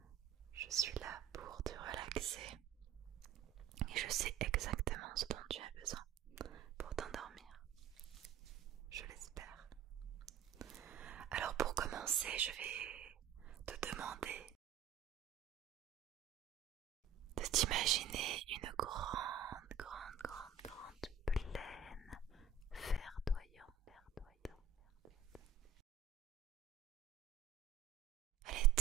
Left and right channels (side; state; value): left; quieter; 7.8 dB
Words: Je suis là pour te relaxer et je sais exactement ce dont tu as besoin pour t'endormir. Je l'espère. Alors pour commencer, je vais te demander de t'imaginer une grande plaine verdoyante. Elle est